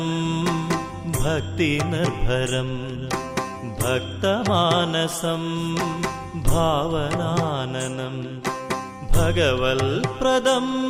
ഭക്തിനിർഭരം ഭക്തമാനസം ഭാവനാനനം ഭഗവൽപ്രദം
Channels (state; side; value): identical; both; correlation 1.00